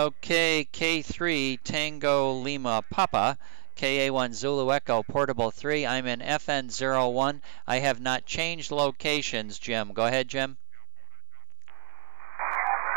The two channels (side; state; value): left; silent; 59 dB below the other